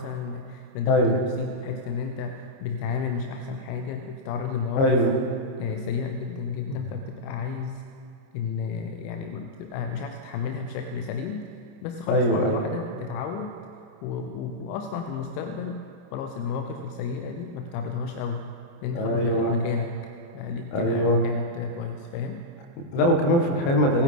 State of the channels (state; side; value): late; right; 30 ms